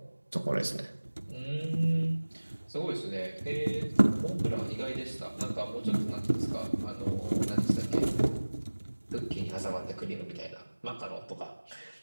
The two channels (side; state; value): both; inverted; correlation -1.00